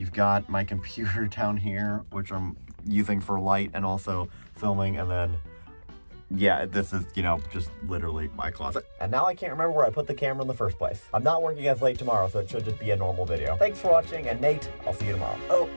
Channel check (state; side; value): inverted; both; correlation -1.00